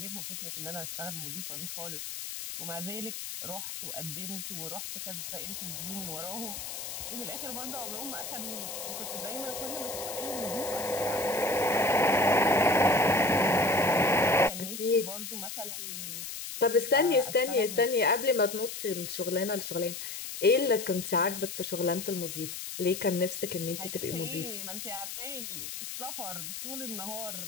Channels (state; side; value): noise; left; hiss, 7 dB below the sound